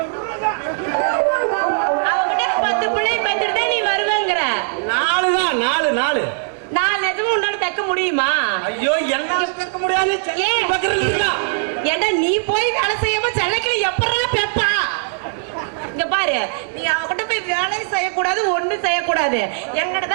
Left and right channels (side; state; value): left; silent; digital silence